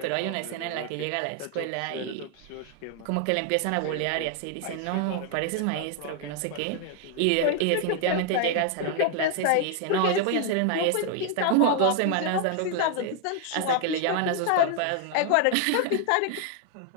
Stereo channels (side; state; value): both; different; correlation 0.00